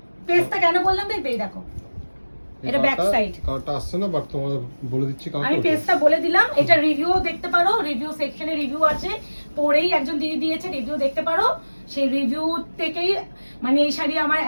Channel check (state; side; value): inverted; both; correlation -1.00